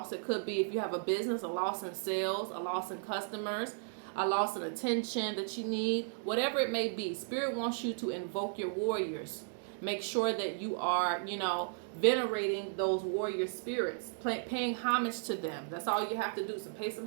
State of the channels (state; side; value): silent; left; digital silence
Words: It could be if you have a business, a loss in sales, a loss in customers, a loss in attention that you need, whatever it may be. Spirit wants you to invoke your warriors. Make sure that you are, you know, venerating those warrior spirits, paying homage to them. That's all you have to do. So pay